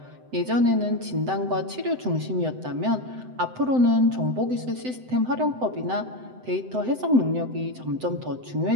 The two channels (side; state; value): left; late; 7.9 ms